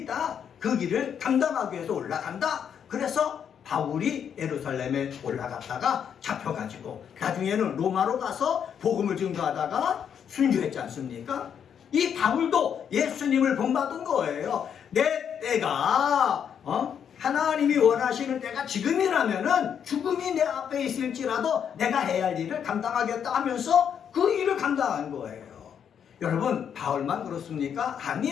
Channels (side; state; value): right; quieter; 8.1 dB